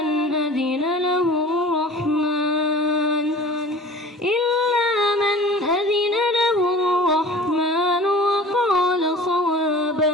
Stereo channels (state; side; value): normal; both; correlation 0.42